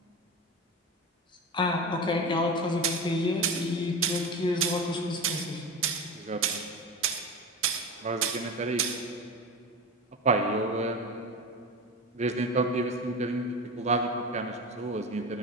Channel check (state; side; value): normal; both; correlation 0.26